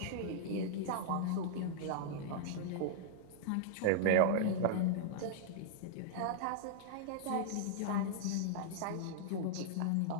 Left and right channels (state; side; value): different; both; correlation -0.01